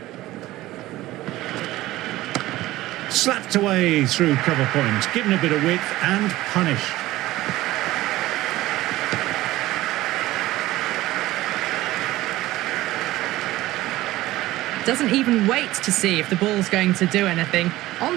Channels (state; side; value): quieter; left; 16.8 dB